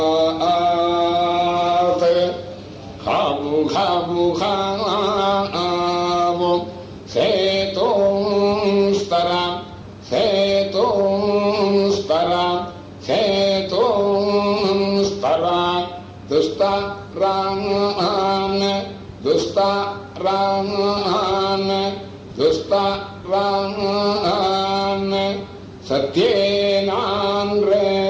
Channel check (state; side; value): identical; both; correlation 1.00